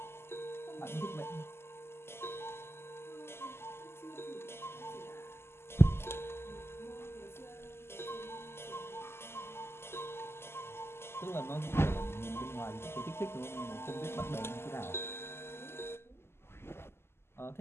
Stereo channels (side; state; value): right; late; 0.12 ms